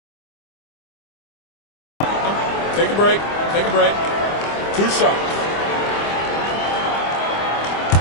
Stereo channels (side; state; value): right; late; 25 ms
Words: Take a break. Take a break. 2 shots.